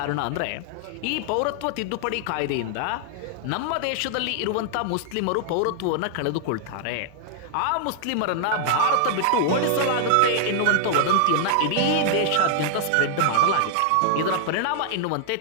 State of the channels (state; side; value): different; both; correlation 0.00